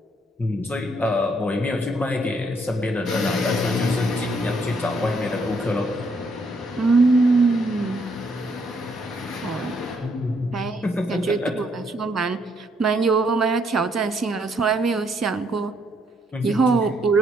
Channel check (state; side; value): normal; both; correlation 0.72